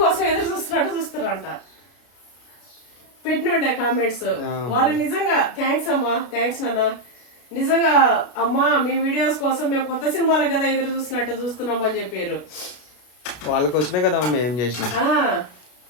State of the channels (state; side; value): late; right; 33 ms